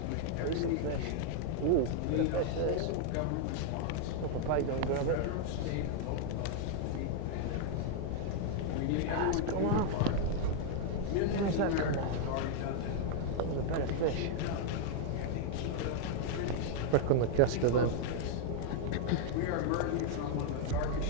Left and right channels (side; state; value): both; different; correlation 0.00